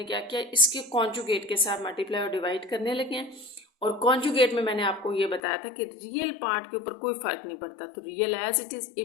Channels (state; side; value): drops out; right; at 5.4 s